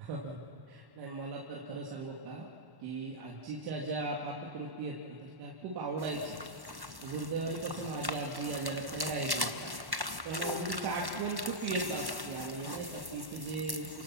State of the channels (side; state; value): left; late; 1.1 ms